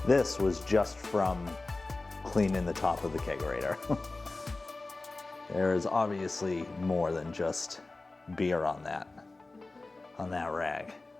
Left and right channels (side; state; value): right; quieter; 3.3 dB